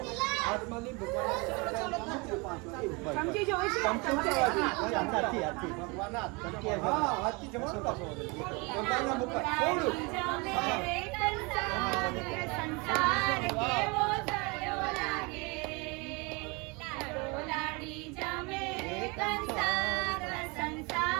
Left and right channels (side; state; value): left; quieter; 28.5 dB